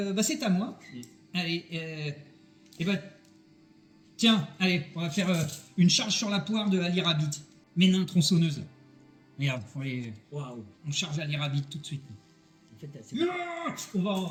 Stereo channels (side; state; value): both; identical; correlation 1.00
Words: bah, c'est à moi. Mm. Allez, et bah, tiens, allez, on va faire une charge sur la poire de Ali Rabbit. Mes nains tronçonneuses. Regarde, Waouh. on charge Ali Rabbit tout de suite. En fait, c'est... On